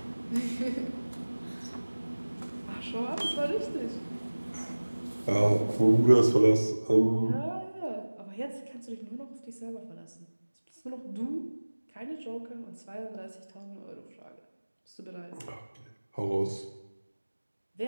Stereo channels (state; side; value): inverted; both; correlation -1.00